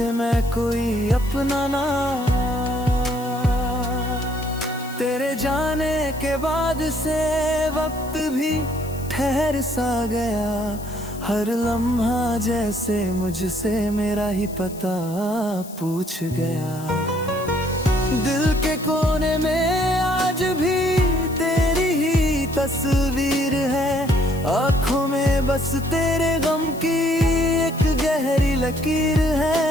मैं कोई अपना ना। तेरे जाने के बाद से वक्त भी ठहर सा गया। हर लम्हा जैसे मुझसे मेरा ही पता पूछ गया। दिल के कोने में आज भी तेरी ही तस्वीर है। आँखों में बस तेरे गम की एक गहरी लकीर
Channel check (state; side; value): noise; left; hiss, 18 dB below the sound